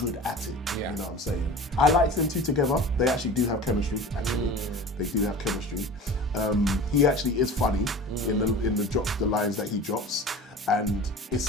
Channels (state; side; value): normal; both; correlation 0.37